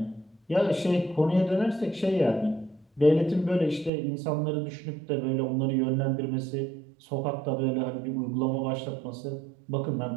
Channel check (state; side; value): drops out; left; at 3.9 s